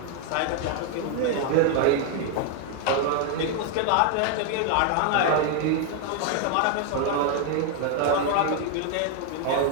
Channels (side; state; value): both; different; correlation 0.00